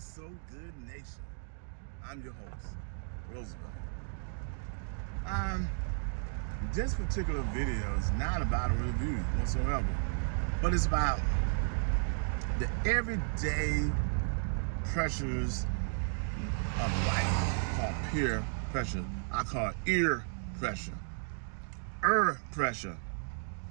so good, nation. I'm your host, Roosevelt. This particular video is not about a review whatsoever, but it's about the everyday pressures of life called peer pressure. I call it ear pressure, pressure,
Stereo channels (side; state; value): left; silent; digital silence